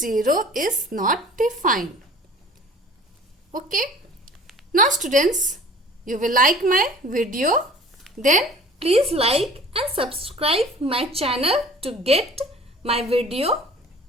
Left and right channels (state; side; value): normal; both; correlation 0.46